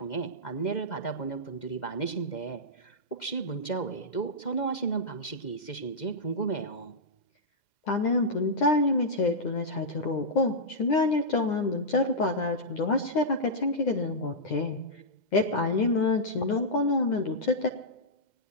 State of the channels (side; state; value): right; late; 2.1 ms